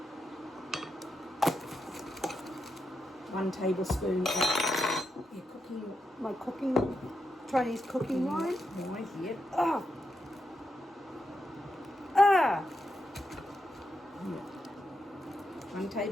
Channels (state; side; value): normal; both; correlation 0.85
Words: 1 tablespoon of Chinese cooking wine. Yep. Ah. Yep. 1